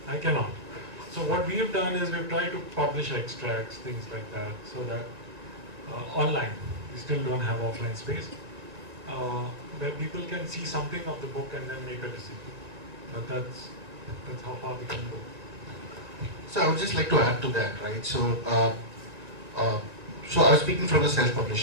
I cannot. So what we have done is we've tried to publish extracts, things like that, so that online, we still don't have offline space, where people can see something of the book and then make a decision. But that's how far we can go. So I would just like to add to that, right? So I was speaking from the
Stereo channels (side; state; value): left; late; 1.8 ms